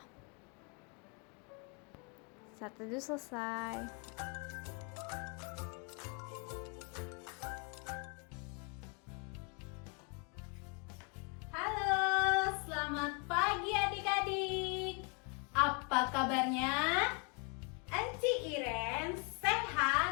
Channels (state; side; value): quieter; right; 34.7 dB